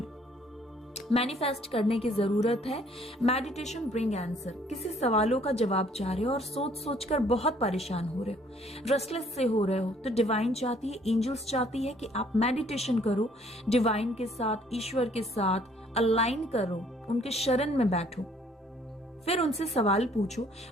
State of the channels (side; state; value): both; normal; correlation 0.61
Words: मैनिफेस्ट करने की जरूरत है। Meditation bring answer. किसी सवालों का जवाब चाह रहे हो और सोच सोच कर बहुत परेशान हो रहे हो, रेस्टलेस से हो रहे हो, तो डिवाइन चाहती है, एंजल्स चाहती है कि आप मेडिटेशन करो, डिवाइन के साथ, ईश्वर के साथ अलाइन करो, उनके शरण में बैठो, फिर उनसे सवाल पूछो।